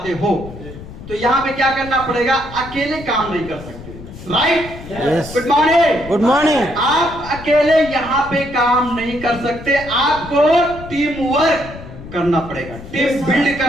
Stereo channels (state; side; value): noise; left; rumble, 14 dB below the sound